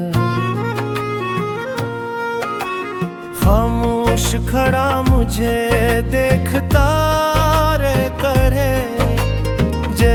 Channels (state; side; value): identical; both; correlation 1.00